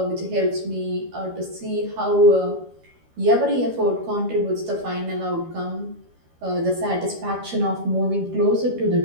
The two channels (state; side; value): late; left; 13 ms